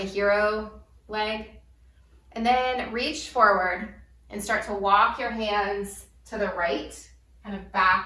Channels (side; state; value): both; identical; correlation 1.00